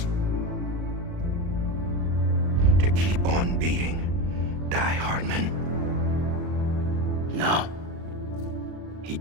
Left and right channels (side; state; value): left; late; 37 ms